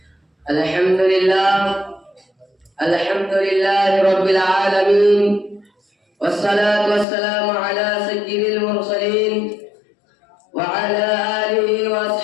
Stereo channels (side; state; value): right; drops out; at 7.1 s